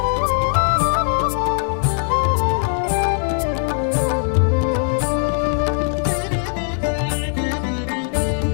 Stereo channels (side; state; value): right; silent; 66 dB below the other